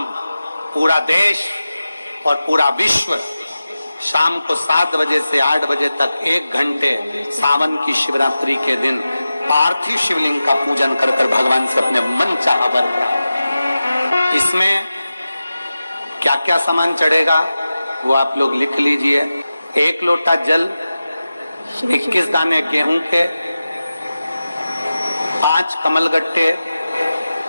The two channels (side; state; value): both; inverted; correlation -0.94